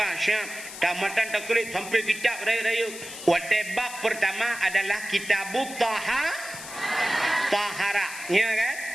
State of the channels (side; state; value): left; noise; hiss, 12 dB below the sound